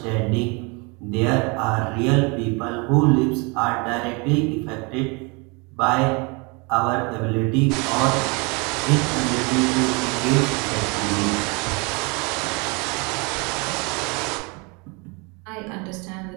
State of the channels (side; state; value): left; quieter; 29.9 dB